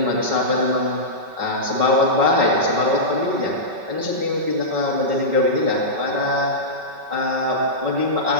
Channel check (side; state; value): left; late; 5.3 ms